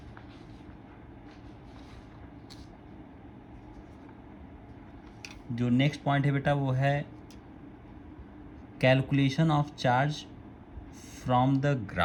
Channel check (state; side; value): identical; both; correlation 1.00